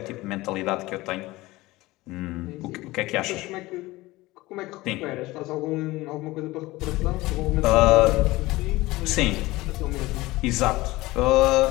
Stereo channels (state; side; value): quieter; right; 19.6 dB